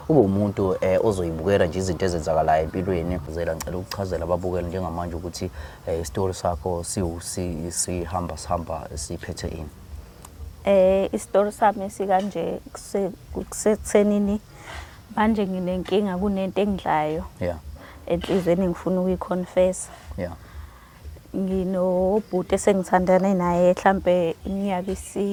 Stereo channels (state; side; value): identical; both; correlation 1.00